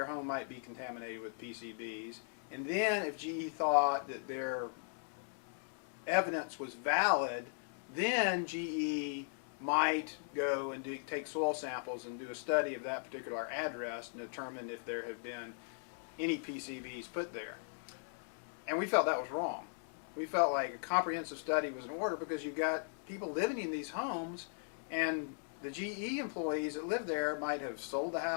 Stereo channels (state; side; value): silent; right; digital silence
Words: home might be contaminated with PCBs. And then if GE thought that their evidence was valid, then GE might go and take soil samples and do a study of that particular address and determine if there have been any PCBs put there. And we felt that was wrong. We felt like a comprehensive study was in order because you've got people living in these homes, and the GE employees that live there might have sold the